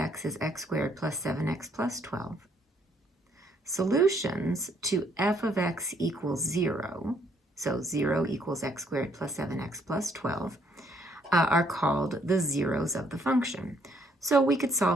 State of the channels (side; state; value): both; normal; correlation 0.68